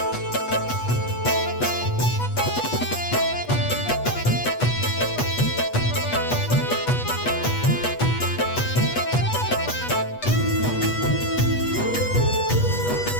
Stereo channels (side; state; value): right; late; 8.2 ms